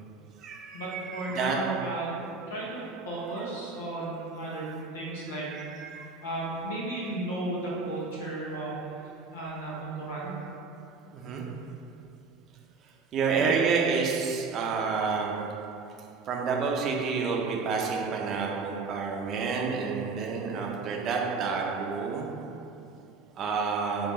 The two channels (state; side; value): quieter; left; 4.3 dB